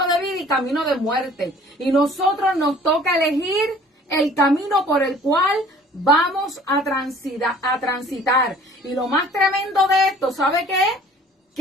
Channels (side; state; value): both; normal; correlation 0.51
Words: de vida y camino de muerte. Y nosotros nos toca elegir el camino por el cual vamos a transitar. Y lo más tremendo de esto, ¿sabe qué es?